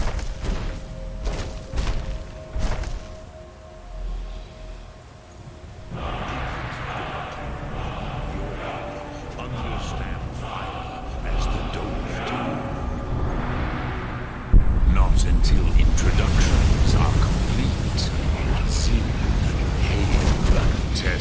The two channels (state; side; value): identical; both; correlation 1.00